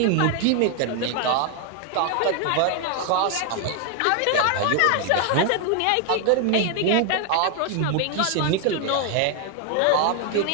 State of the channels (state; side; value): different; both; correlation 0.00